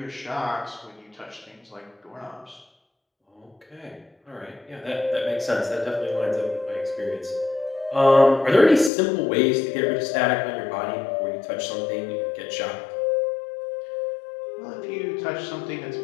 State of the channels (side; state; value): right; drops out; at 8.9 s